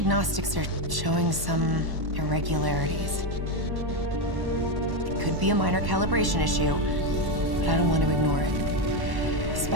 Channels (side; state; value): left; late; 1.1 ms